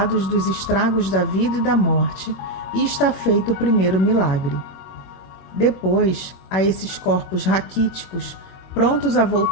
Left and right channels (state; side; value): late; right; 21 ms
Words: dos estragos da vida e da morte, e está feito o primeiro milagre. Depois, a esses corpos raquíticos, prontos a